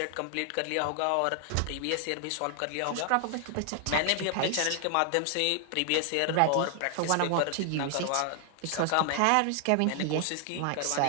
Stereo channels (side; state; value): both; different; correlation 0.00